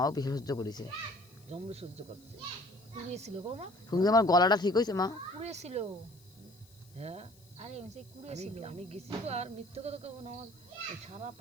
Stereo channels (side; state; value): left; noise; hiss, 27 dB below the sound